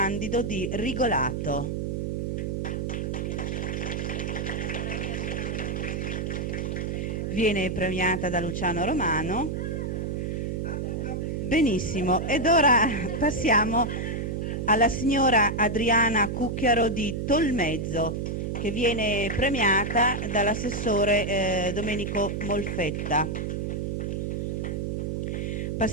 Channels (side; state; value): right; noise; hum, 2 dB below the sound